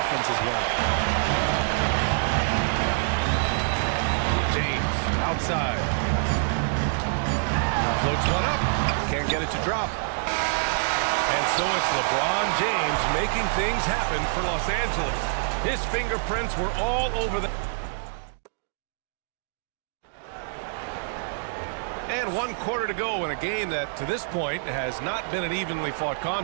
as well. outside. Floats one up. Can't get it to drop. And so it's LeBron James making things happen for Los Angeles. His fingerprints were all over the... And 1 quarter to go in a game that, to this point, has not been an evenly fought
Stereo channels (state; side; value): silent; left; digital silence